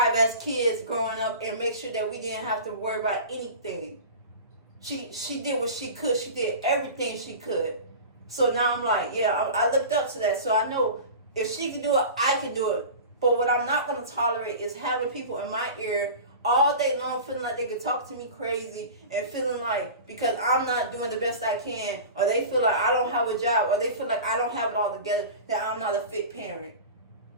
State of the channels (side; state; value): both; inverted; correlation -0.34